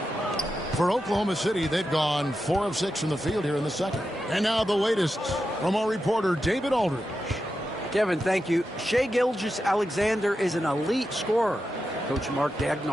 For Oklahoma City, they've gone 4 of 6 from the field here in the second. And now the latest from our reporter, David Aldridge. Kevin, thank you. Shai Gilgeous-Alexander is an elite scorer. Coach Mark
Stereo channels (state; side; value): normal; both; correlation 0.89